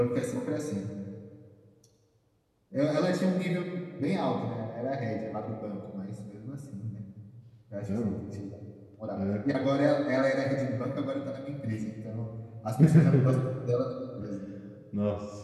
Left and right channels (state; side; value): identical; both; correlation 1.00